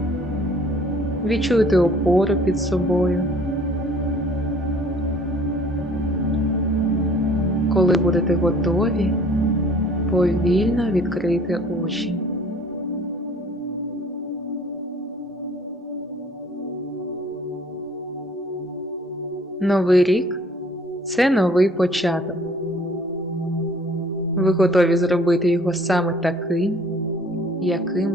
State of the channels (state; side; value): normal; both; correlation 0.55